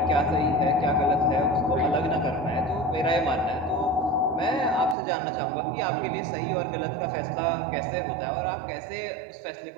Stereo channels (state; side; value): drops out; left; at 5.0 s